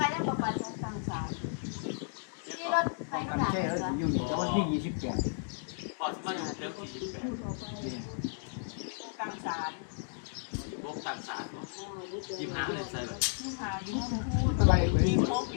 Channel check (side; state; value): right; silent; digital silence